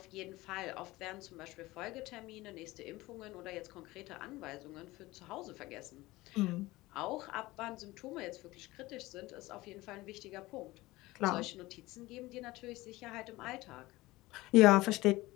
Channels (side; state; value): right; quieter; 19.5 dB